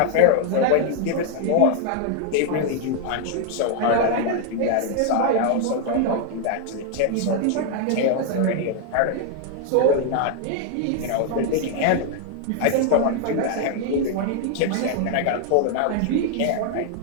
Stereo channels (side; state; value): both; different; correlation 0.00